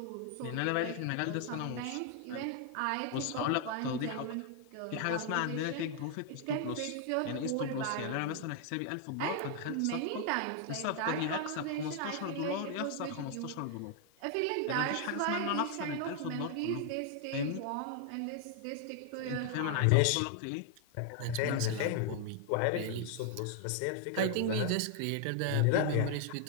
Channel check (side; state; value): both; different; correlation 0.00